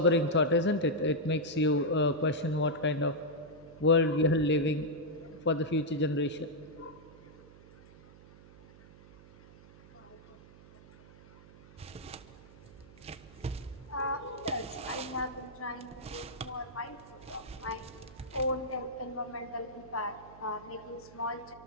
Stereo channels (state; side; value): noise; right; hum, 21 dB below the sound